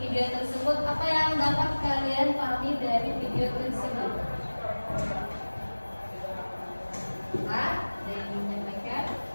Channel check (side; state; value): both; inverted; correlation -1.00